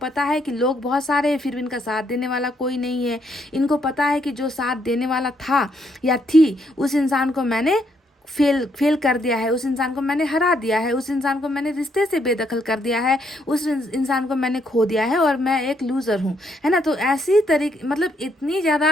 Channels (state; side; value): normal; both; correlation 0.73